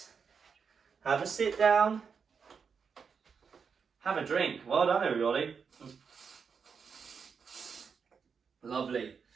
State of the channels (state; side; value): quieter; left; 6.1 dB